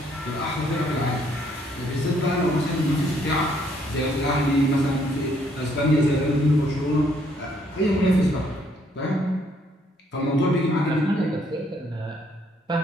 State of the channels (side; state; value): both; normal; correlation 0.68